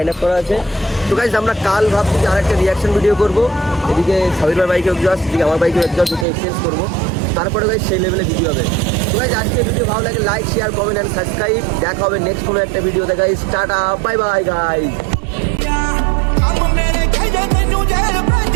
আপ করা আছে। তো গাইজ আমরা কাল ভাবছি যে আরেকটা রিয়াকশন ভিডিও করবো, এদিকে সাবির ভাই বাইকে এক্সস্ট, এদিকে আমার বাইকে এক্সস্ট, দুটো এক্সচেঞ্জ করবো, তারপরে গাইজ সেই লেভেলে ভিডিও হবে। তো গাইজ আজকে ভিডিও ভালো লাগে like share comment and subscribe. দেখা হবে নেক্সট কোনো একটা ভিডিওতে guys. Tata bye bye guys.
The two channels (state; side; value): drops out; left; at 6.2 s